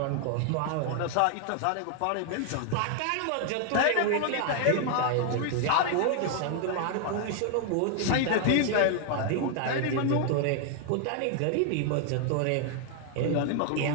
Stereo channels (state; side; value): different; both; correlation 0.00